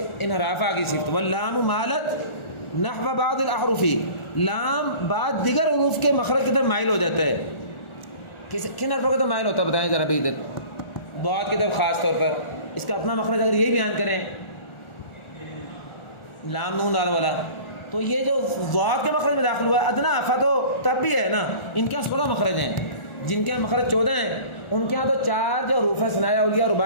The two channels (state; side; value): late; right; 1.4 ms